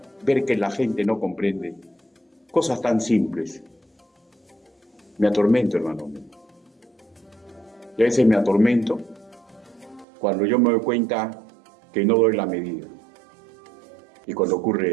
ver que la gente no comprende cosas tan simples. Me atormento, hermanos míos. Y a veces me atormento cuando yo me doy cuenta que no doy la medida. Y cuando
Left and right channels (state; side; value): drops out; left; at 10.1 s